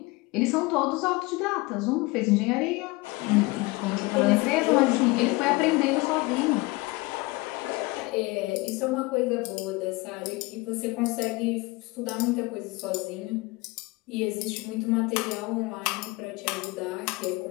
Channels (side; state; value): right; quieter; 23.6 dB